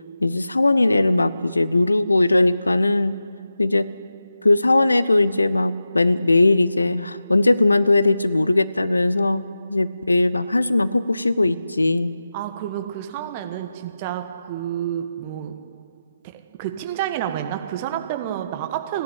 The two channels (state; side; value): inverted; both; correlation -0.91